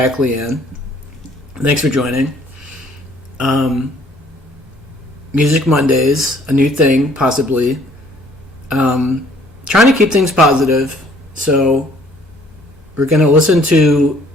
Leanne. Thanks for joining. Music Mondays, a new thing, possibly. Trying to keep things positive, so we're going to listen to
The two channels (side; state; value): both; normal; correlation 0.59